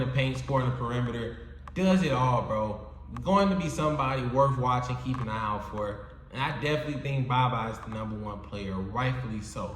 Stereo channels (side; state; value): both; identical; correlation 1.00